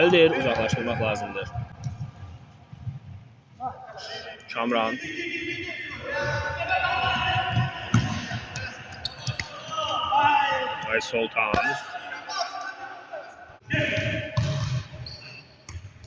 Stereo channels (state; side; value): identical; both; correlation 1.00